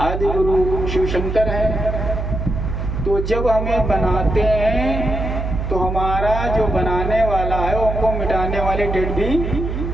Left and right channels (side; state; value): right; noise; hum, 3 dB below the sound